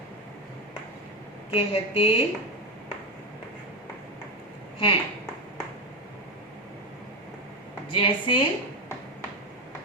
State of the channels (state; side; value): normal; both; correlation 0.14